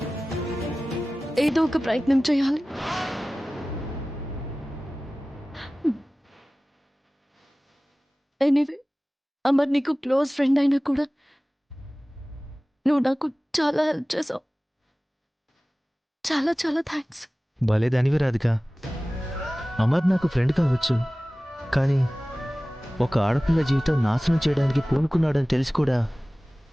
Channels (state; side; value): normal; both; correlation 0.97